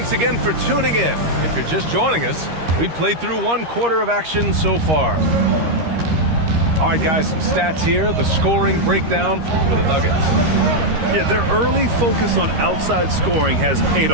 again for tuning in. If you're just joining us, we played through 1 quarter of action so far. All right, guys, some stats here. The scoring breakdown for the Nuggets. Yeah, their early focus on outside scoring has paid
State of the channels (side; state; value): left; late; 13 ms